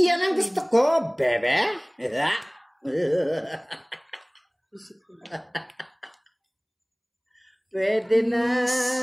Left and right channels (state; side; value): identical; both; correlation 1.00